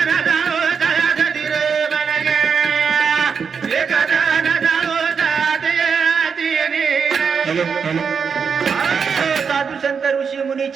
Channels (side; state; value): left; quieter; 6.2 dB